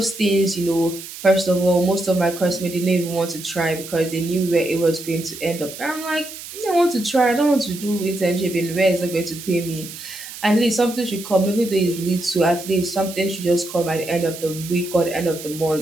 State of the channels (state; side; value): noise; right; hiss, 12 dB below the sound